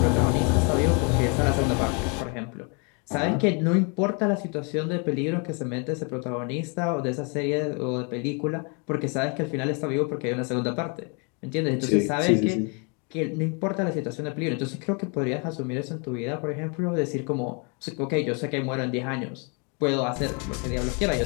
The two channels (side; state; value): right; quieter; 35.0 dB